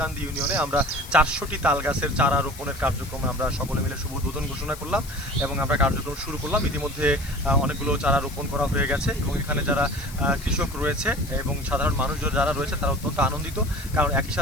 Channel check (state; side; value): noise; left; hiss, 16 dB below the sound